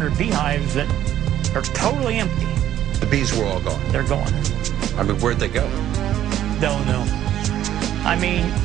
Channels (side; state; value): left; quieter; 11.7 dB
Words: beehives that are totally empty. The bees were all gone. They're gone. I mean, where'd they go? Don't know. I mean,